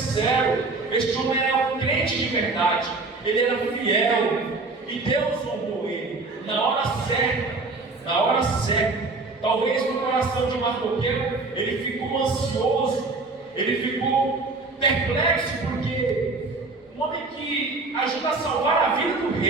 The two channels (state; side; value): quieter; left; 3.6 dB